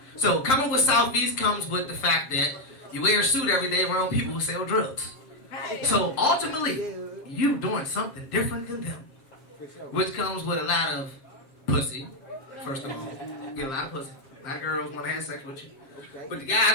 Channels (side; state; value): right; late; 7.6 ms